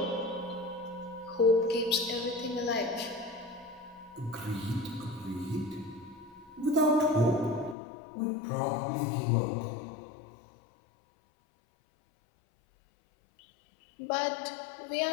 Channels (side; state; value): right; drops out; at 7.8 s